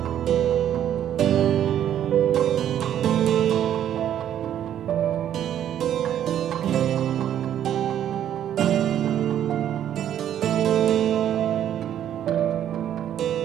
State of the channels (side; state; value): left; quieter; 10.5 dB